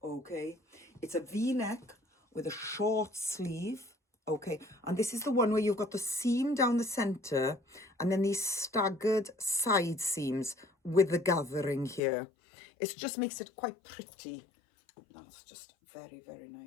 okay? It's a V-neck with a short sleeve. Okay, and this is the one where you've got the seam down the centre and then these staggered side seams with the gathering here. It just makes it quite pretty. That's just very, very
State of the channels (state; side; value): drops out; right; at 12.0 s